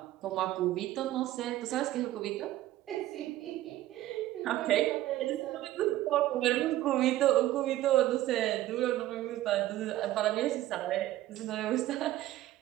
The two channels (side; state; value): left; quieter; 14.8 dB